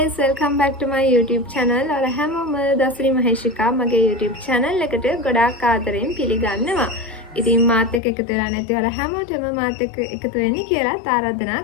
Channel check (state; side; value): drops out; right; at 8.0 s